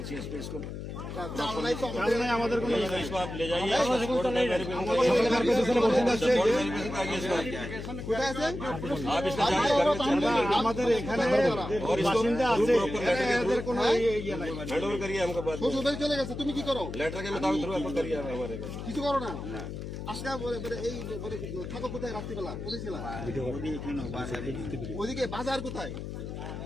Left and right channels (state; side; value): noise; left; hum, 7 dB below the sound